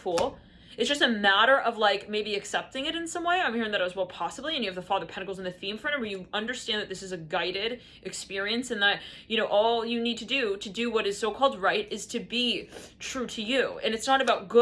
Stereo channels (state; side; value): identical; both; correlation 1.00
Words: It's just a matter of like maybe accepting it in some way. I'm hearing that as well, possibly. And you have the Father of Pentacles in the theme for it, where you understand that this is a guided experience, and that, you know, all you need to do what is so-called right is to be true to you. And it's not about